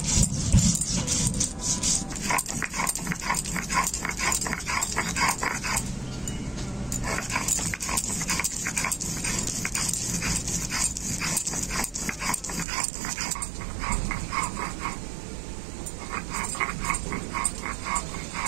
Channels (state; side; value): drops out; left; at 12.7 s